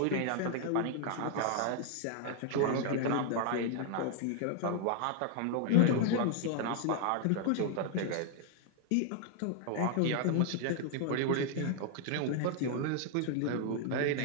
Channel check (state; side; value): different; both; correlation 0.00